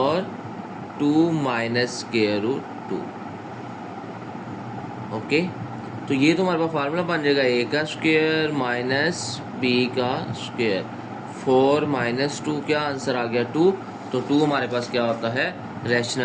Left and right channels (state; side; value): identical; both; correlation 1.00